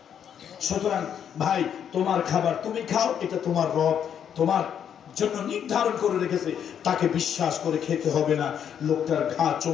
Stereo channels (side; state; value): right; quieter; 8.7 dB